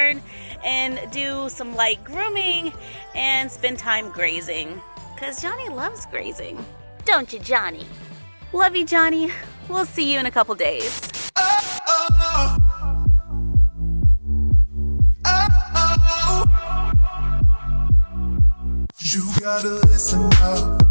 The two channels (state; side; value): inverted; both; correlation -1.00